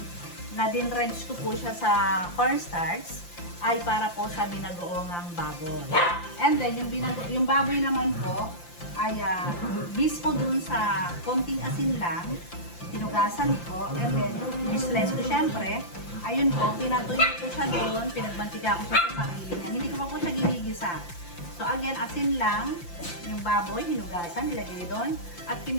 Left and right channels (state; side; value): late; right; 5.8 ms